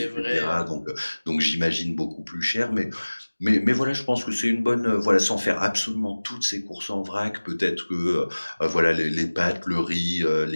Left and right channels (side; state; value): both; inverted; correlation -1.00